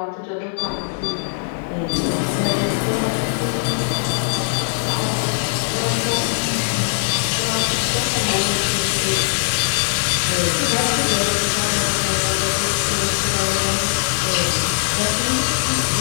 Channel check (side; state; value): right; silent; digital silence